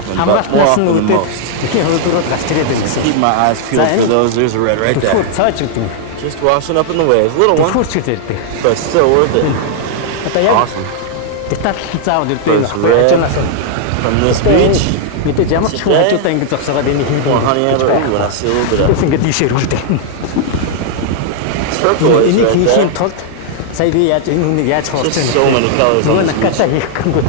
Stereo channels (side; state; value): both; different; correlation -0.01